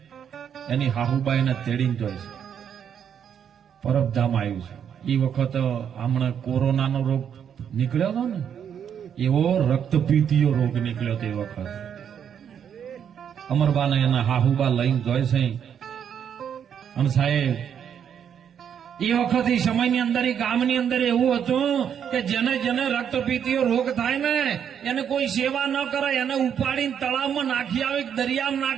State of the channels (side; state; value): left; quieter; 8.4 dB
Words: એની હાહુબાઈને તેડીને જોઈ છે. પરબધામ આવ્યું છે. એ વખત હમણાં કોરોનાનો રોગ નીકળ્યો હતો ને, એવો રક્તપીતીયો રોગ નીકળ્યો તે વખત અમરબાને એના હાહુબા લઈને જોઈ છે. અને સાહેબ એ વખત એ સમયની અંદર એ ગામની અંદર એવું હતું કે જેને જેને રક્તપીતીયો રોગ થાય ને એને કોઈ સેવા ન કરે, એને ઉપાડીને તળાવમાં નાખી આવે, દરિયામાં